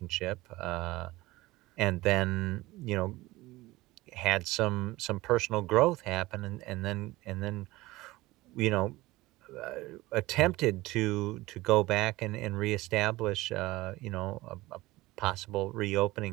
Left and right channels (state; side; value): quieter; left; 19.2 dB